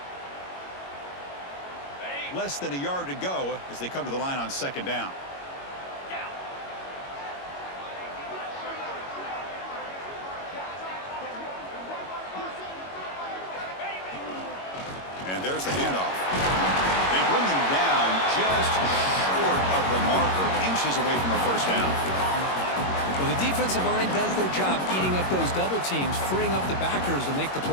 Less than a yard to go as they come to the line on 2nd down. And there's the handoff. They bring him down just short of the marker, inches away from a first down. Well, the defensive line does their job eating up those double teams, freeing up the backers to make the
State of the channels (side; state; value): right; late; 21 ms